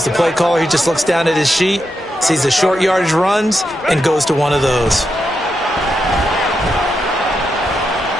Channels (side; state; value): both; normal; correlation 0.85